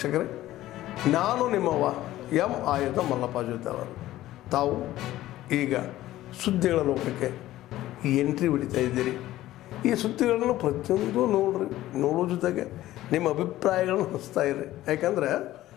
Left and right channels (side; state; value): right; quieter; 15.0 dB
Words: ನಾನು ನಿಮ್ಮವ ಎಂ ಆಯುಧ ಮಲ್ಲಪ್ಪ ಜೊತೆಯವರು. ತಾವು ಈಗ ಸುದ್ದಿಗಳ ಲೋಕಕ್ಕೆ ಎಂಟ್ರಿ ಹೊಡಿತಾ ಇದ್ದೀರಿ. ಈ ಸುದ್ದಿಗಳನ್ನು ಪ್ರತಿಯೊಂದು ನೋಡೋ ಜೊತೆಗೆ ನಿಮ್ಮ ಅಭಿಪ್ರಾಯಗಳನ್ನು ಹಂಚ್ತಾ ಇರಿ. ಯಾಕಂದರೆ